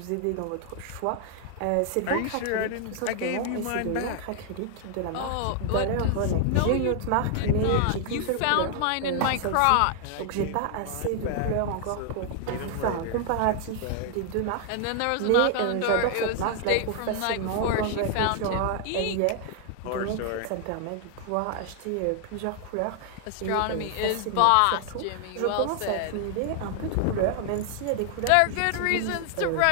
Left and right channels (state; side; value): different; both; correlation 0.00